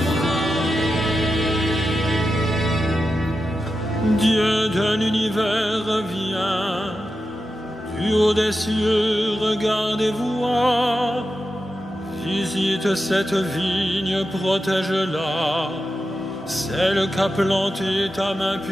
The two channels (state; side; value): normal; both; correlation 0.90